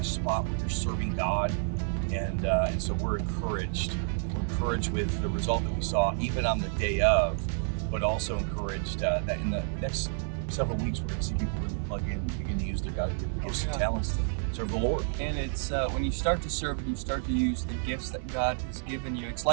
spot where you're serving God. And so we're encouraged. We're encouraged with the result that we saw even on the day of, but also encouraged that in the next several weeks, we're going to see people really plug in, begin to use their God-given gifts and talents to serve the Lord. And it's when you start to serve and you start to use the gifts that God has given you, it's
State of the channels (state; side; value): silent; left; 58 dB below the other